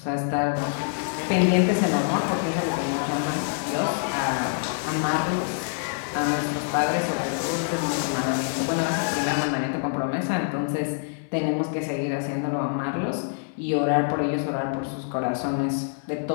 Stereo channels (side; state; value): right; silent; 61 dB below the other